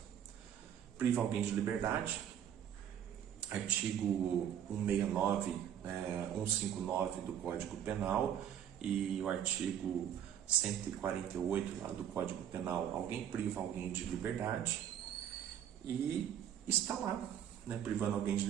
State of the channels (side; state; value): left; quieter; 9.8 dB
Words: Priva alguém de liberdade, artigo 169, 159 do Código Penal e o artigo 148 lá do Código Penal. Alguém priva alguém de liberdade e está lá, né, privando alguém de